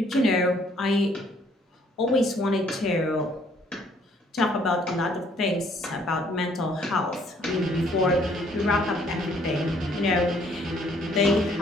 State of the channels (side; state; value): both; normal; correlation 0.63